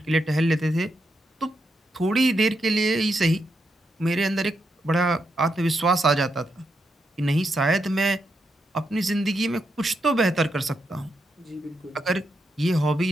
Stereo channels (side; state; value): both; normal; correlation 0.82